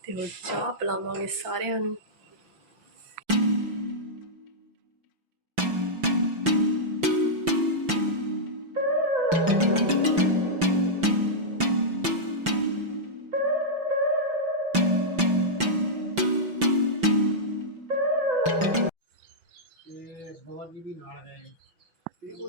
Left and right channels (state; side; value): late; left; 5.9 ms